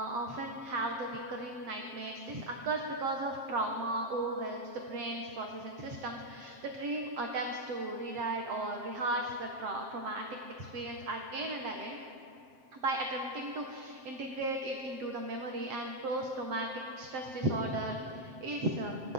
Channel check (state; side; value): late; left; 7.7 ms